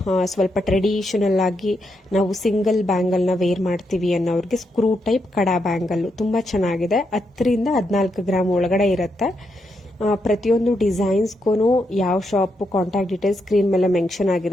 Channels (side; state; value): both; normal; correlation 0.82